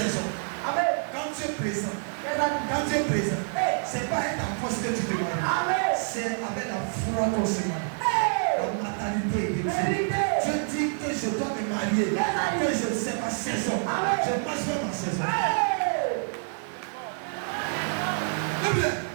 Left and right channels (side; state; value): left; silent; 60 dB below the other